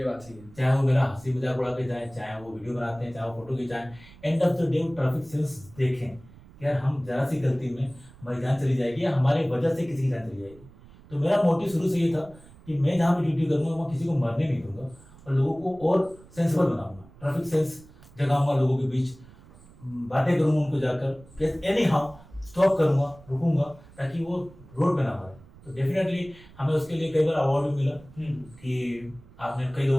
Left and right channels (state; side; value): noise; right; rumble, 23 dB below the sound